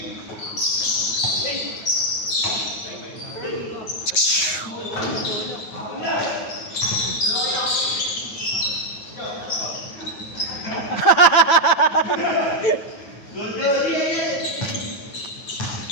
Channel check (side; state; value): right; late; 8.9 ms